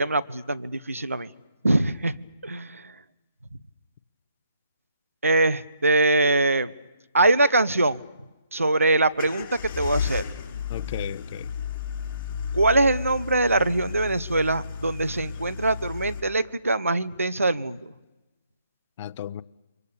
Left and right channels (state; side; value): inverted; both; correlation -0.71